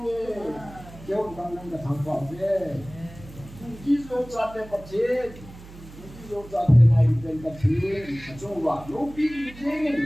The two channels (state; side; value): noise; right; hum, 17 dB below the sound